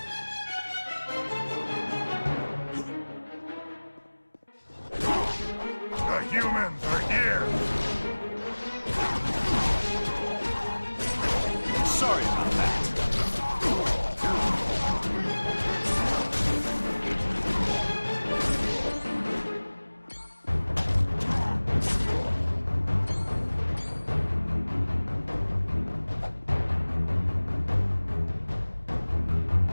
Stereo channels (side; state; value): both; inverted; correlation -1.00